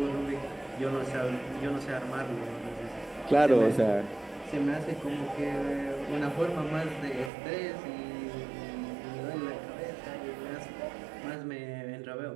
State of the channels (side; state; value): left; drops out; at 7.3 s